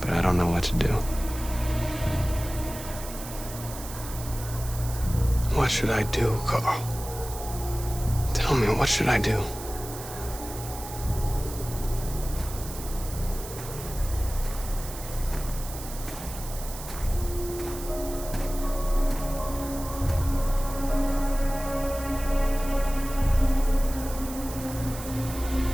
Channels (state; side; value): noise; right; hiss, 12 dB below the sound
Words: But I don't know what to do. What should I do, Carl? Tell me, what should I do?